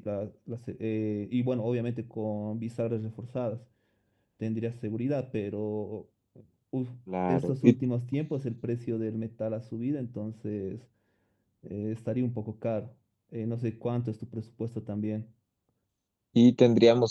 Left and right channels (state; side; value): identical; both; correlation 1.00